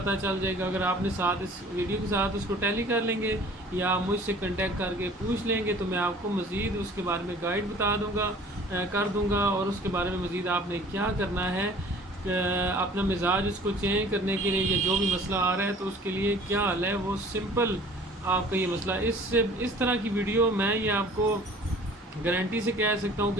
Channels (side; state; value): both; normal; correlation 0.49